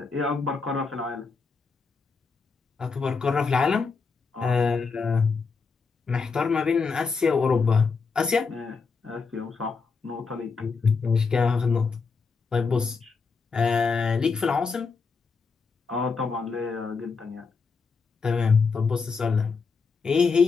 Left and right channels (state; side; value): quieter; right; 4.9 dB